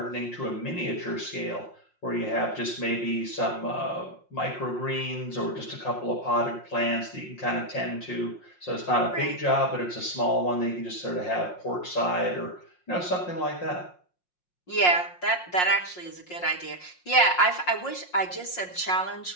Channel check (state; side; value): late; right; 5.6 ms